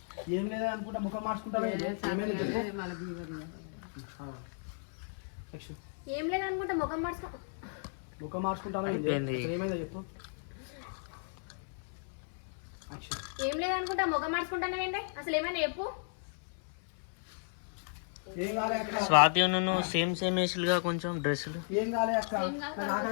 ఏం లేదనుకుంటా ముఖం మార్చుకుంటావేంటి? ఏమైంది చెప్పు. యాక్షన్. ఏం లేదు అనుకుంటా ముఖం మార్చుకో. ముఖం మార్చుకుంటాను అయిపోయింది. ఏమైందో చెప్పు. యాక్షన్. ఏం లేదు అనుకుంటా ముఖం మార్చుకుంటానండి. అసలు ఏమైనా చెప్పు. ఏం కాలే అక్క. స్వాతి నువ్వు సేమ్ వేసులుగా కొంచెం డ్రెస్సులు. ఏం కాలే అక్క.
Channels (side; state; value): right; silent; 55 dB below the other